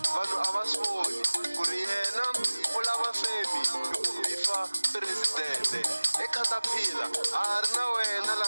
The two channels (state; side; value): inverted; both; correlation -1.00